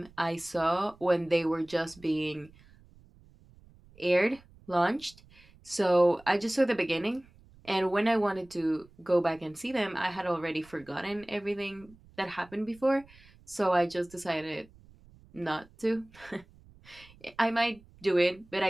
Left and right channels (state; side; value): noise; right; rumble, 26 dB below the sound